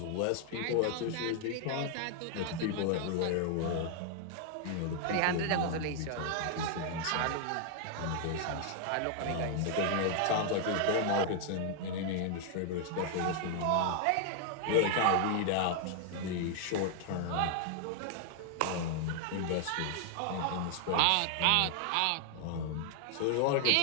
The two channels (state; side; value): different; both; correlation 0.00